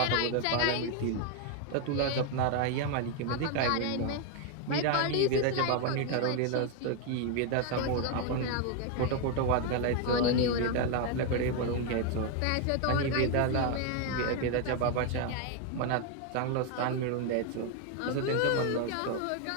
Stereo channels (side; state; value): both; different; correlation 0.01